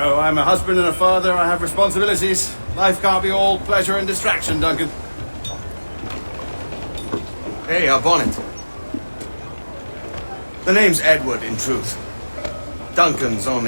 a husband and a father. I have responsibilities. Life can't be all pleasure and distraction, Duncan. Hey, our bonnet. The name's Edward, in truth. Duncan's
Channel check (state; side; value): inverted; both; correlation -1.00